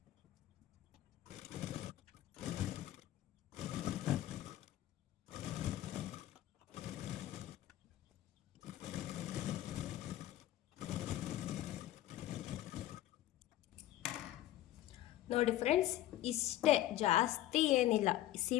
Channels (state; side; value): quieter; right; 14.0 dB